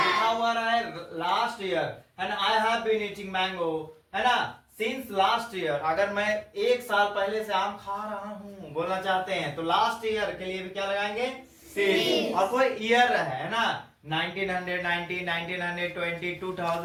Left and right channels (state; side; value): identical; both; correlation 1.00